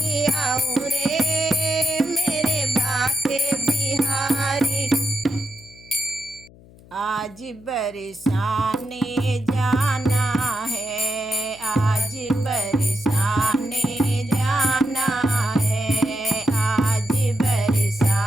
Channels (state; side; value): noise; left; hum, 23 dB below the sound